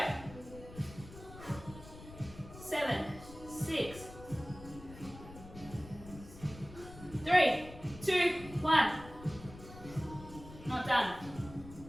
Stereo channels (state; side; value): noise; left; rumble, 16 dB below the sound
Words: 7, 6, 3, 2, 1. Not done.